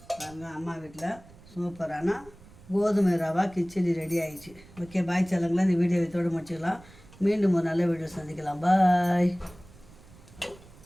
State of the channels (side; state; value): right; noise; rumble, 23 dB below the sound